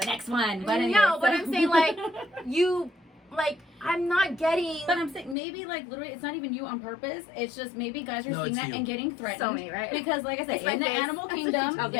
next one. But anyway, no, but I'm saying like I'm not getting. But I'm saying maybe like literally, it's not even you on purpose. It's just maybe guys are seeing that and getting threatened. So me, right? Because like I said, in the animal kingdom,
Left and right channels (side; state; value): right; drops out; at 5.4 s